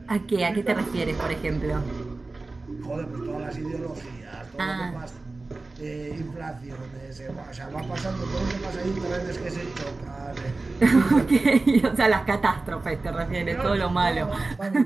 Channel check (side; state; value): left; quieter; 3.4 dB